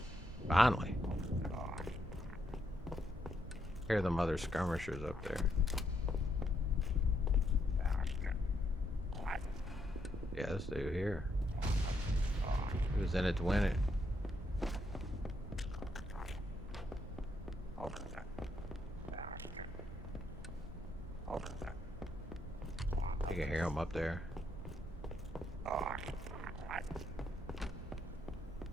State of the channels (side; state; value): both; normal; correlation 0.77